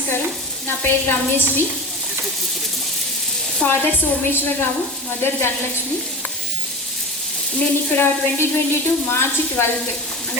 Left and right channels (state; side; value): normal; both; correlation 0.31